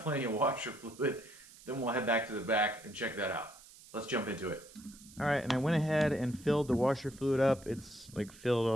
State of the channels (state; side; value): noise; right; hiss, 21 dB below the sound